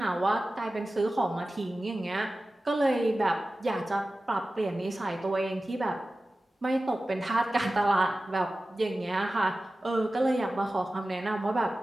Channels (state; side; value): normal; both; correlation 0.96